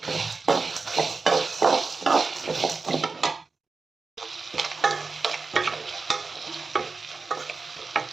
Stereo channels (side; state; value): left; quieter; 4.2 dB